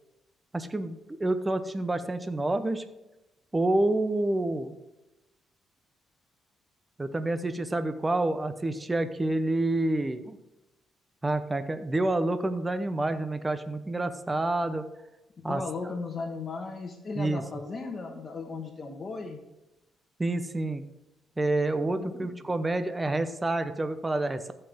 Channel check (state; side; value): normal; both; correlation 0.92